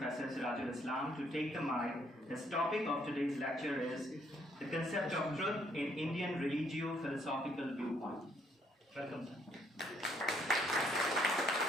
Sirajul Islam to take the mic. His topic of today's lecture is the concept of truth in Indian religio-philosophical viewpoint. Welcome, sir.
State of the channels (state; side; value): normal; both; correlation 0.69